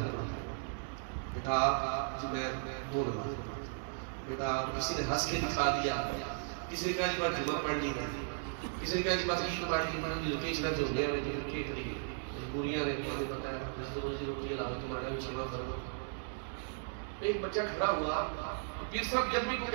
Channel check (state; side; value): silent; left; digital silence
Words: پڑھتا ہوں. بیٹا آپ؟ جی میں 2 نماز پڑھتا ہوں. بیٹا آپ؟ کسی نے ہنس کے دکھا دیا، کسی نے کہا جی بات جمعہ پڑھ لی، کسی نے کہا جی بات عید پڑھ لی، لکیش نہ جو ہونے والے جو کے کری مجبوریاں نے مجھے بتایا جس روزی روٹی حلال تمہارا بھی جمع کرو. ایک بچہ کھڑا ہوا، پیر صاحب جب بھی کوئی